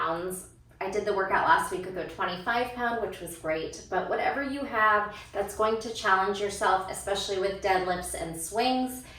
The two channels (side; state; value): both; identical; correlation 1.00